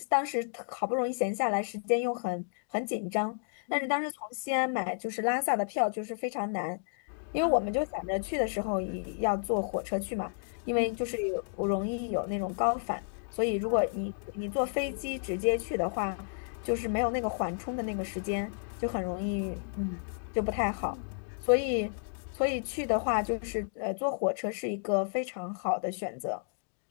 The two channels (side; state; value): right; silent; digital silence